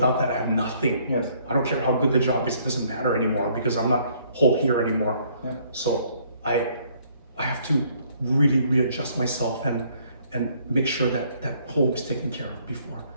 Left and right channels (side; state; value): both; inverted; correlation -0.64